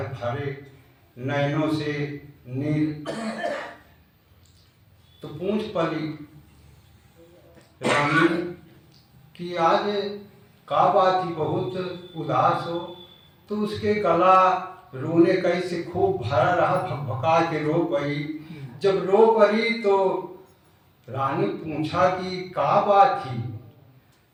भरे नैनों से नील। तो पूछ पड़ी रानी कि आज का बात ही बहुत उदास हो। तो उसके गला रोने कैसे खूब भरा रहा, भकभका के रो पड़ी। जब रो पड़ी तो रानी पूछा कि का बात थी।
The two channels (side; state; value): both; identical; correlation 1.00